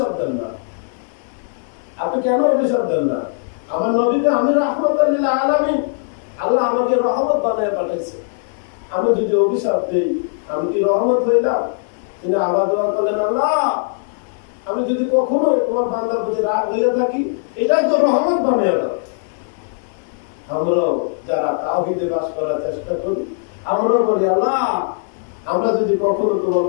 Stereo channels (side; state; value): right; silent; 59 dB below the other